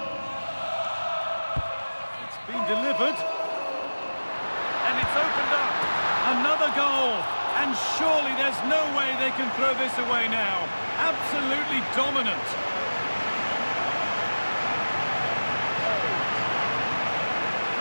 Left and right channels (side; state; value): both; inverted; correlation -1.00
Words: It's been delivered. And it's opened up. Another goal. And surely there's no way they can throw this away now. Absolutely dominant.